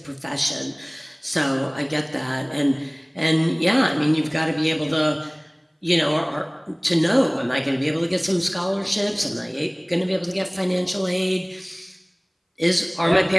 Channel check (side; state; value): both; identical; correlation 1.00